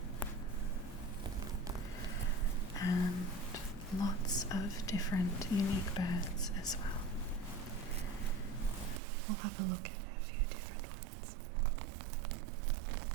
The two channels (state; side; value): drops out; left; at 9.0 s